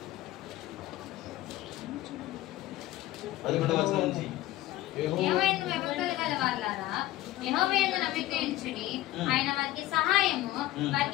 11వ వచనం నుంచి యెహోవాయందు నమ్మిక ఉంచుడి, ఆయన వారికి సహాయము,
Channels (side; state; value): right; quieter; 15.8 dB